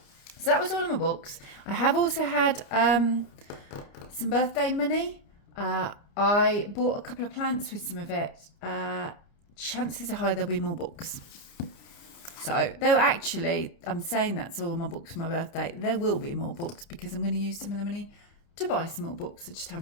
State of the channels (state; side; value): late; right; 30 ms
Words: So that was all of my books. I have also had some birthday money. I bought a couple of plants with some of it. Chances are high there'll be more books. So, though actually, I'm saying that's all my books for my birthday. There will be more books because I'm going to use some of the money to buy some more books. I just